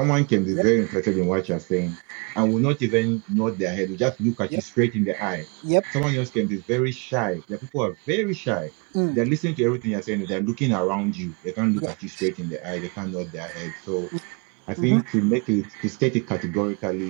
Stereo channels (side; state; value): left; quieter; 32.7 dB